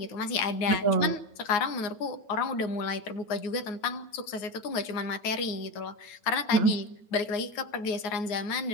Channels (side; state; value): right; late; 9.6 ms